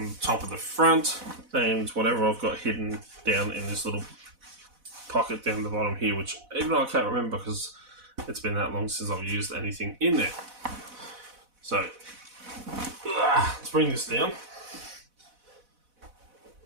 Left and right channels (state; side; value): late; left; 4.0 ms